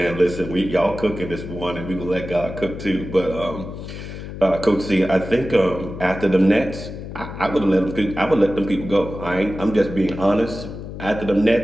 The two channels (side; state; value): left; noise; hum, 10 dB below the sound